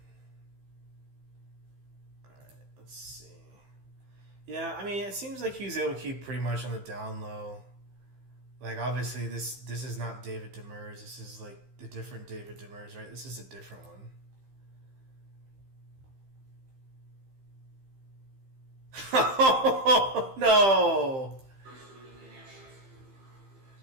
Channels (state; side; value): late; left; 15 ms